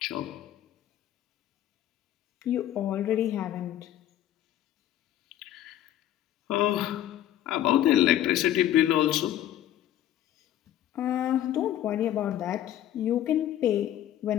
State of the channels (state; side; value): quieter; right; 12.2 dB